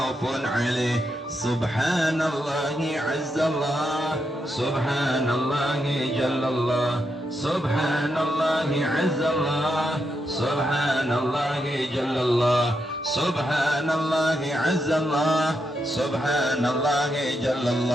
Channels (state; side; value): normal; both; correlation 0.83